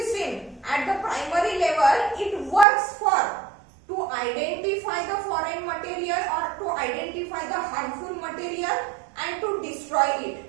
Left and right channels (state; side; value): drops out; left; at 2.7 s